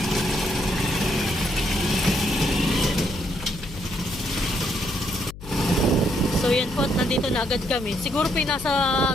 So yan po, at nandito na agad kami. Siguro po nasa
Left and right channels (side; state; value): left; noise; hum, 14 dB below the sound